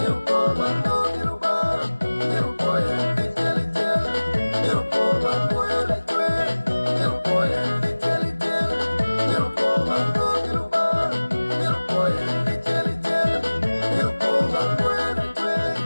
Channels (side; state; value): both; inverted; correlation -1.00